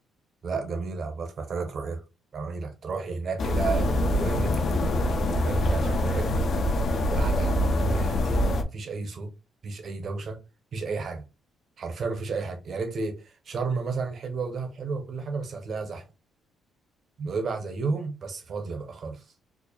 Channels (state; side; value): normal; both; correlation 0.78